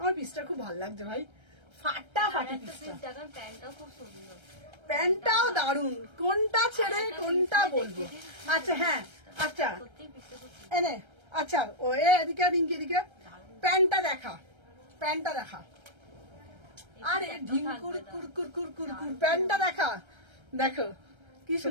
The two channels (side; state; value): left; late; 1.3 ms